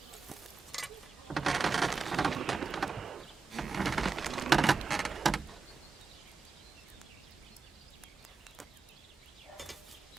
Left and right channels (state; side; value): quieter; left; 4.5 dB